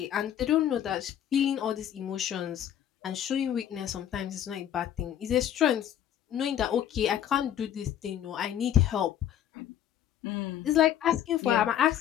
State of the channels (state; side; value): quieter; right; 10.5 dB